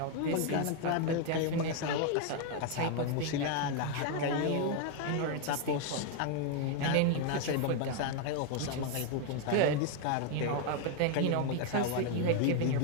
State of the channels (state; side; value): different; both; correlation 0.01